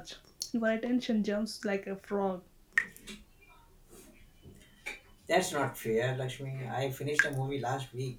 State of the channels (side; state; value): both; identical; correlation 1.00